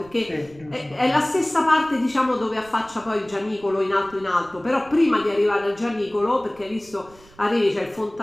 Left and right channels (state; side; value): noise; right; rumble, 25 dB below the sound